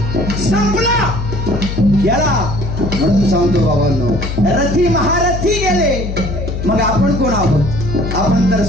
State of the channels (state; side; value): noise; left; hum, 4 dB below the sound